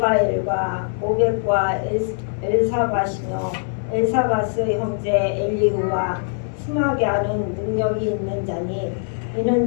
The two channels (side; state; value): right; silent; 64 dB below the other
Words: 오벳과 엘사바시며 엘사바스 형제 엘리후와 스마갸는 능력이 있는 자니